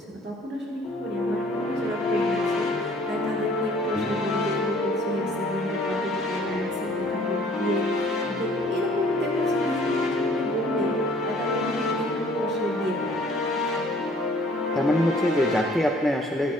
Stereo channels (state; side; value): normal; both; correlation 0.56